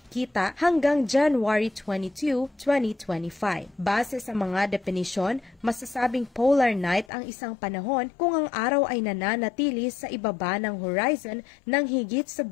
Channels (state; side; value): drops out; right; at 7.1 s